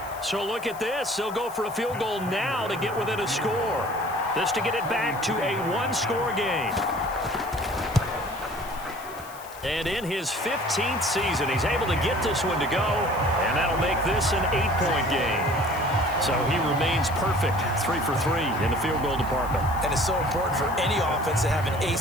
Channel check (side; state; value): left; noise; hiss, 19 dB below the sound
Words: So look at this. They'll go for a field goal now to get within a score. This to get it back to a one-score game. And in his 15th season, he's able to get this one to go, and that'll make this an 8-point game. So he remains perfect, 3 for 3 in the field goal department. And it's so important for any offense to have an